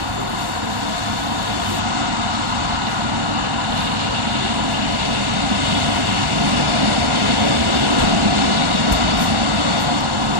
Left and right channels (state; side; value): late; left; 1.4 ms